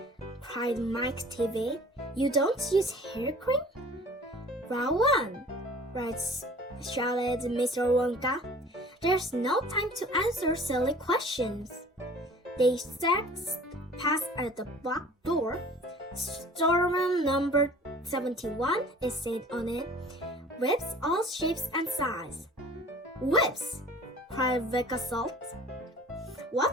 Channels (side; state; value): both; normal; correlation 0.47